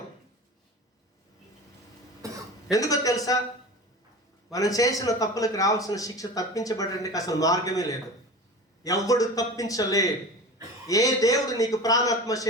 ఎందుకో తెలుసా? మనం చేసిన తప్పులకు రావాల్సిన శిక్ష తప్పించబడడానికి అసలు మార్గమే లేదు. ఎవడు తప్పించలేడు. ఏ దేవుడు నీకు ప్రాణాత్మ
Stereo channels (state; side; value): normal; both; correlation 0.34